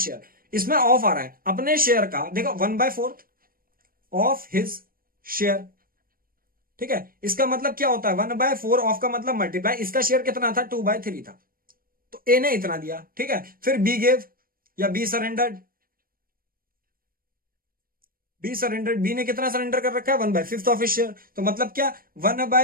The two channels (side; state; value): left; late; 0.42 ms